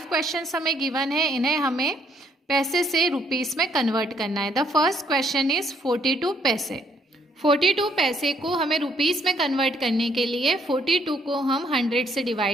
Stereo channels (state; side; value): normal; both; correlation 0.68